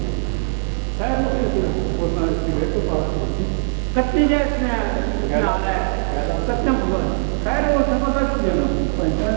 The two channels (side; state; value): left; silent; 65 dB below the other